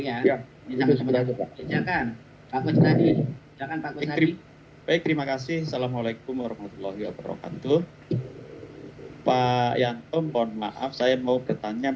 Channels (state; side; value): identical; both; correlation 1.00